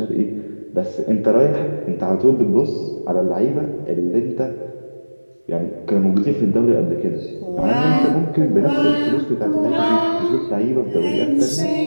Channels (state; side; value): inverted; both; correlation -1.00